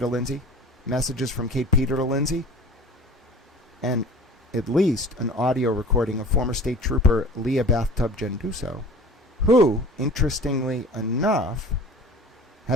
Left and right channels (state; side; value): normal; both; correlation 0.43